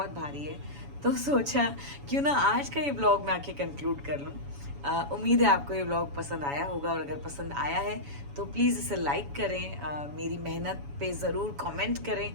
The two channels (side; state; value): left; late; 7.1 ms